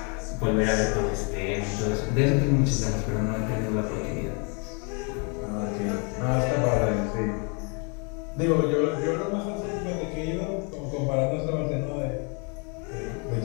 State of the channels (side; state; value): right; quieter; 35.5 dB